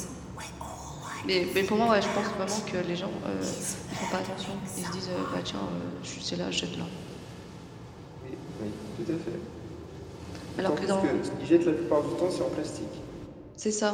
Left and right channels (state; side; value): identical; both; correlation 1.00